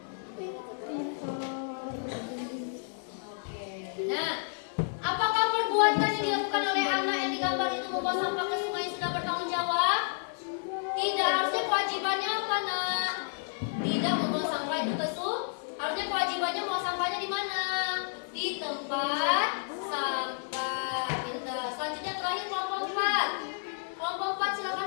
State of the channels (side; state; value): right; silent; 57 dB below the other